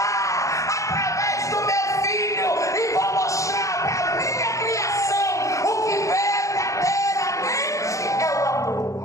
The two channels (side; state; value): right; late; 0.15 ms